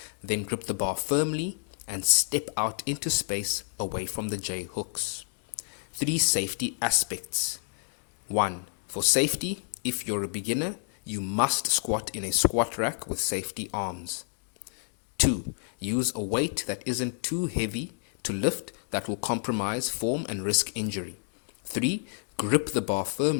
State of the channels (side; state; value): right; silent; digital silence